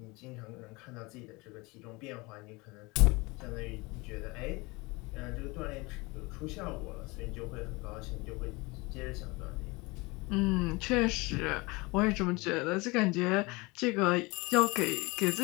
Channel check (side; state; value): right; quieter; 25.0 dB